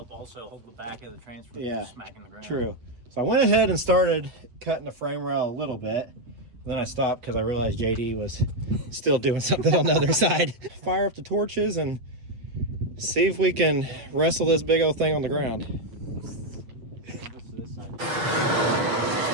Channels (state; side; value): late; left; 8.2 ms